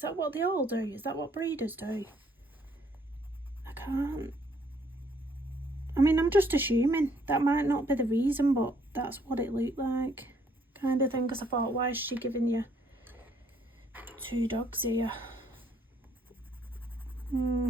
that what they all do? Is that what breeders do? I can't. I mean, I'm just assuming. That might not be the reason, but that's what it looked like. Kind of thing, because I thought, why is she giving you 2 dogs here?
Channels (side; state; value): both; normal; correlation 0.66